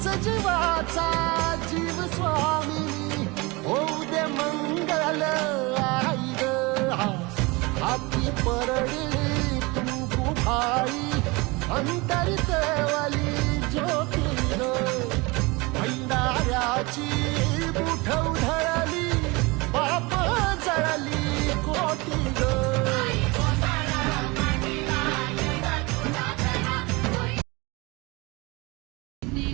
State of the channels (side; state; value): left; quieter; 25.2 dB